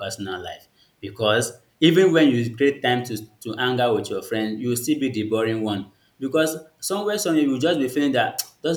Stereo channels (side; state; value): both; identical; correlation 1.00